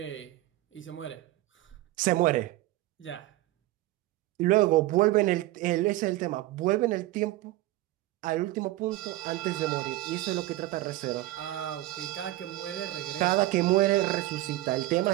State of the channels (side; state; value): left; quieter; 16.8 dB